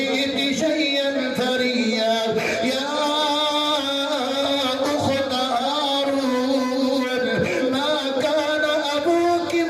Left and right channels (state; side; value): identical; both; correlation 1.00